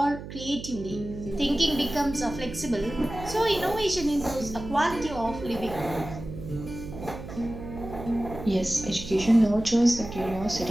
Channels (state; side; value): noise; right; hum, 11 dB below the sound